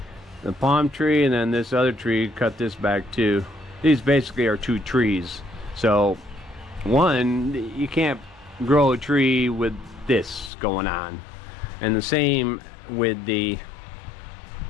the palm tree and then this other tree cut this back too. These basically are 2 trees. So one, you can't grow a tree with this going on, and the same with the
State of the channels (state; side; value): drops out; right; at 10.5 s